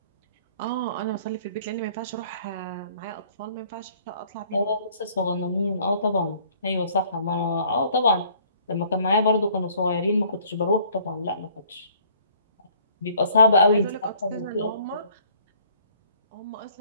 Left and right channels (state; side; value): inverted; both; correlation -0.58